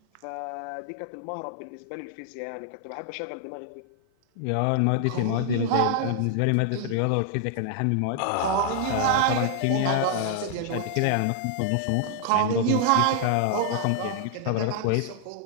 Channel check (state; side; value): different; both; correlation 0.00